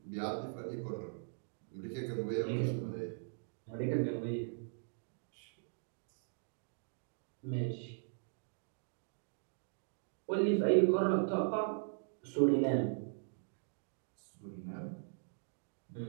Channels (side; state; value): left; silent; digital silence